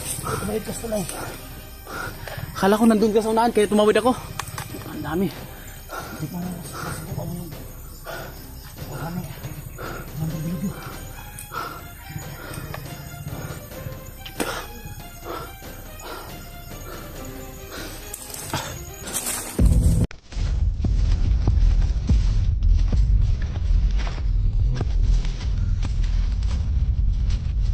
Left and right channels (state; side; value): identical; both; correlation 1.00